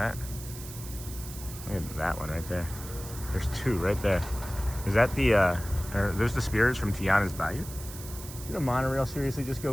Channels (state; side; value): noise; right; hiss, 13 dB below the sound